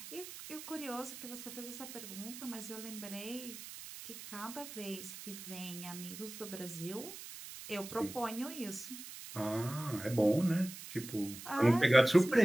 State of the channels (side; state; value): right; noise; hiss, 12 dB below the sound